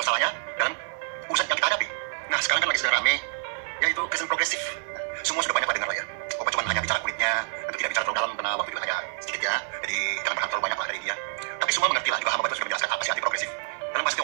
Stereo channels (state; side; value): silent; left; 60 dB below the other